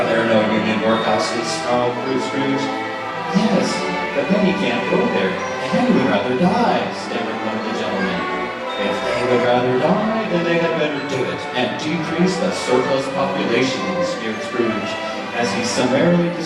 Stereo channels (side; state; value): both; identical; correlation 1.00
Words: there no union workhouses?" snarled Scrooge. "Yes, but many can't go there, and many would rather die," stammered one of the gentlemen. "If they would rather die, then they had better do it, and decrease the surplus population," sneered Scrooge, as he summarily